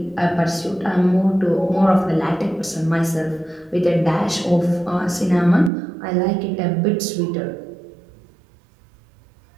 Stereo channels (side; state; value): left; drops out; at 5.7 s